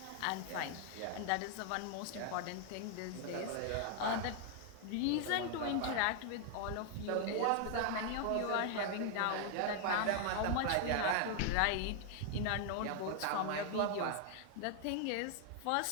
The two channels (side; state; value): both; different; correlation 0.00